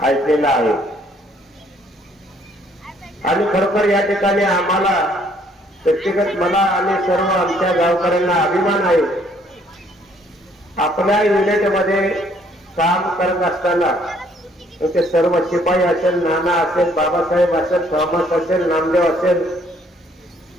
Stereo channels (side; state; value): both; normal; correlation 0.64